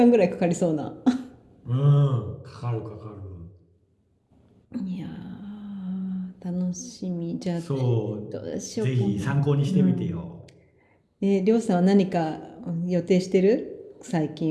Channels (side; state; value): both; identical; correlation 1.00